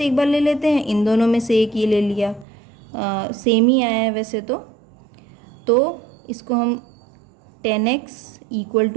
एक बार ले लेते हैं, इन दोनों में से एक ये ले लिया, सेम ही आया है वैसे तो इसको हम 10x इक्वल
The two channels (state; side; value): drops out; left; at 2.5 s